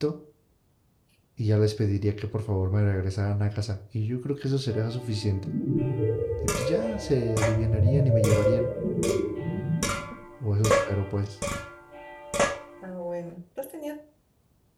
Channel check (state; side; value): identical; both; correlation 1.00